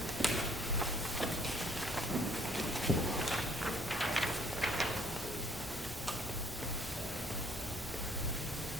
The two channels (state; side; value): normal; both; correlation 0.61